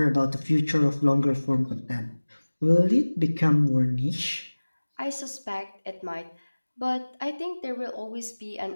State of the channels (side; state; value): both; inverted; correlation -1.00